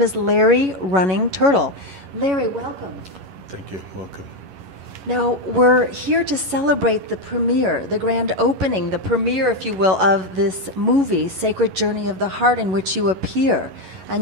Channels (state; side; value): late; left; 11 ms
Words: is Larry Running Turtle. Larry, welcome. Thank you. Welcome. Now, we're here to celebrate the premiere, the grand opening, the premiere, if you will, of this movie, Sacred Journey of the Heart, in which you appear. And